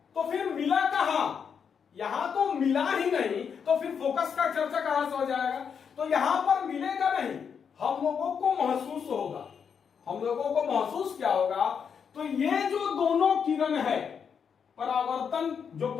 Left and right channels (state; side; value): quieter; right; 6.9 dB